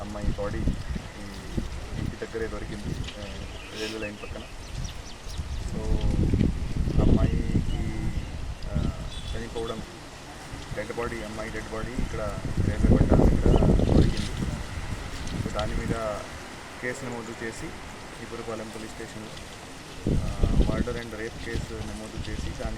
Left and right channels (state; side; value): identical; both; correlation 1.00